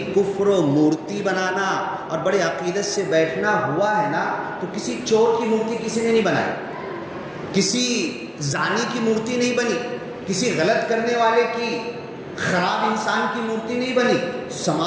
کفر و مورتی بنانا اور بڑے عقیدت سے بیٹھنا ہوا ہے نا، تو کسی چور کی مورتی کسی نے نہیں بنائی، کسی زانی کی مورتی نہیں بنی، کسی غلط کرنے والے کی، خراب انسان کی مورتی نہیں بنی،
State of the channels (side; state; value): both; identical; correlation 1.00